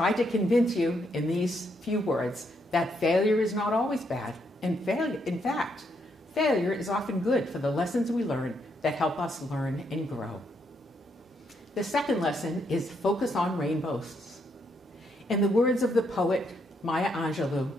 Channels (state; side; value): normal; both; correlation 0.76